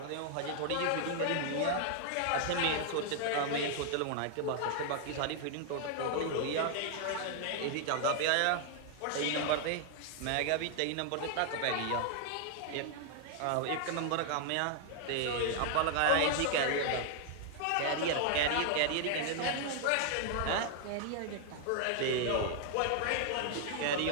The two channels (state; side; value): different; both; correlation 0.00